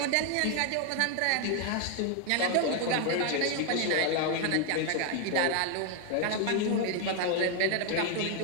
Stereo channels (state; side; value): different; both; correlation 0.01